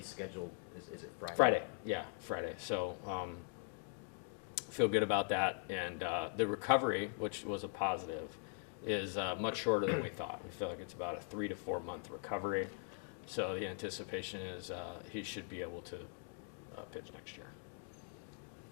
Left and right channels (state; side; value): silent; right; 50 dB below the other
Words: scheduled, is it Friday? Friday, yeah, Friday. So feel good about that. And the recovery, which was a positive, is much shorter than we thought. We feel like it's about a 3 to 4 month recovery. So the anticipation is he should be able to pitch next year.